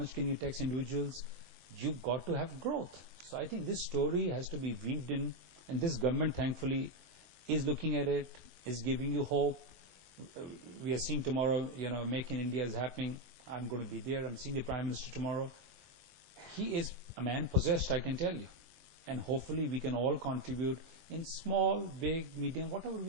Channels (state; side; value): late; left; 24 ms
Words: can you tax individuals? You've got to have growth. So I think this story has to be weaved in, and this government thankfully is looking at it, is giving you hope. We are seeing tomorrow, Make in India is happening. I'm going to be there. I'm seeing the Prime Minister tomorrow. He is a man possessed, I can tell you. And hopefully we can all contribute in small, big, medium, whatever